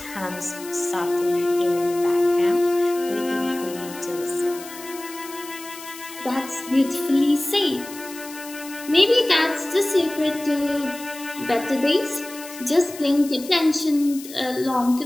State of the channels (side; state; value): left; noise; hiss, 15 dB below the sound